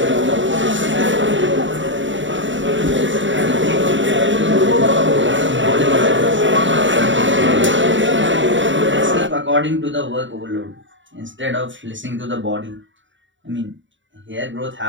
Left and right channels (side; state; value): left; late; 0.55 ms